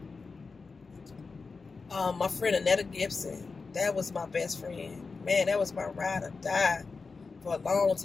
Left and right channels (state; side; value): quieter; right; 4.4 dB